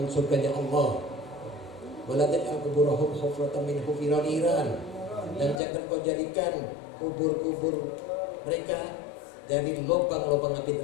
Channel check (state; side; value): drops out; right; at 5.6 s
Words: surganya Allah. Wala taj'al kuburahum hufratan min hufiril niran. Dan jangan kau jadikan kubur-kubur mereka dari lubang-lubang api